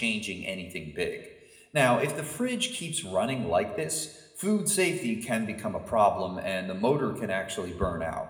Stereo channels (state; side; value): identical; both; correlation 1.00